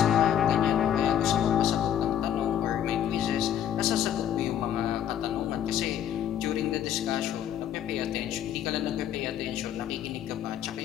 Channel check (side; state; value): right; quieter; 10.2 dB